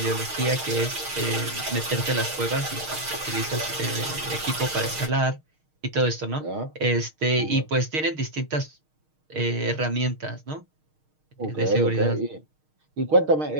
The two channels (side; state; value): left; late; 6.5 ms